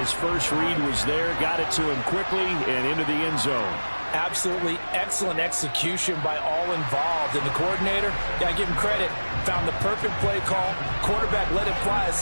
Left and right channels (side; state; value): both; inverted; correlation -1.00